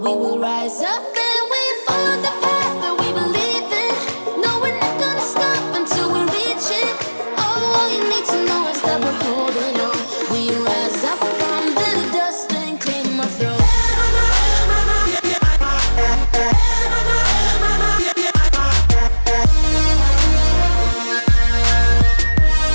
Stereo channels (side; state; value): both; inverted; correlation -1.00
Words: we will rise up.